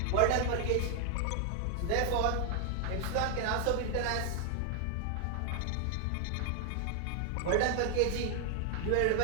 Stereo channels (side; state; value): both; different; correlation 0.00